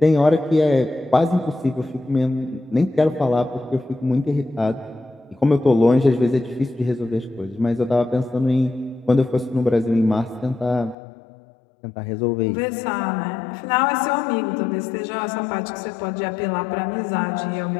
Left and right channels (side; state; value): right; drops out; at 11.0 s